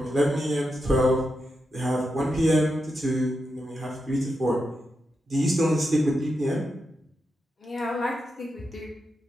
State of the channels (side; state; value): both; normal; correlation 0.87